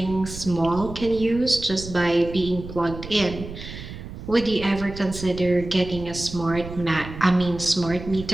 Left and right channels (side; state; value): right; noise; rumble, 11 dB below the sound